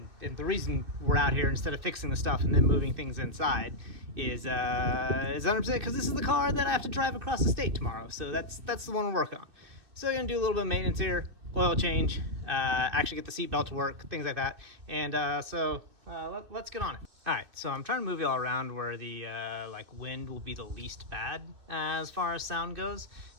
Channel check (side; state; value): left; late; 2.6 ms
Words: the reason we're out here instead of fixing the stuff and then moving things inside is 100% because this is the car that I have to drive across the state tomorrow. So that's the one we're working on. So we're gonna do a little bit of maintenance here, oil change, actually get the seatbelt to work, things like that, and let's get on it. All right, so I'm trying to move you all around where the wind will be the least bad as far as sound goes.